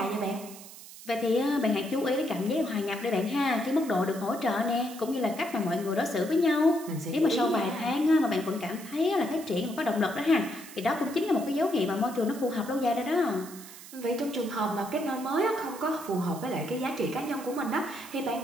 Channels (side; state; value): right; noise; hiss, 16 dB below the sound